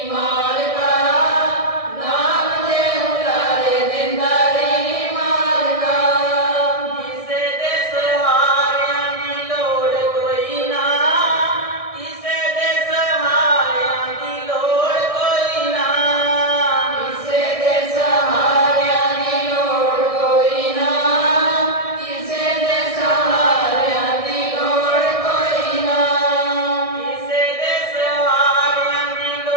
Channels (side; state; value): right; late; 1.6 ms